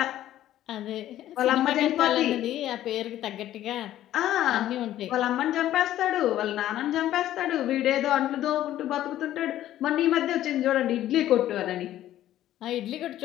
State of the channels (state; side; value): quieter; right; 13.0 dB